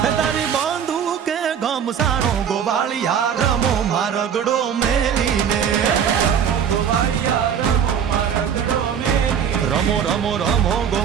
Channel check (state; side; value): quieter; left; 8.0 dB